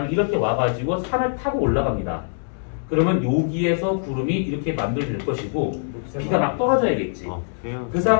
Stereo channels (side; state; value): right; silent; digital silence